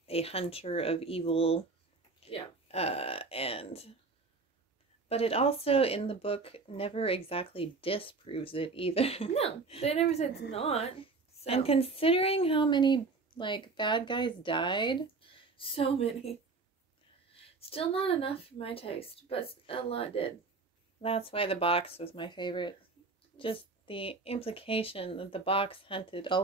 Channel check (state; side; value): quieter; left; 4.0 dB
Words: a hunter of evil. Yeah. But it also in the book never exactly disproves it either. No, they never said it's not. So. And considering how many bad guys died, so many. Still not enough for my taste, but a lot did. That's why the box was my favorite. Just the implication that the box hunted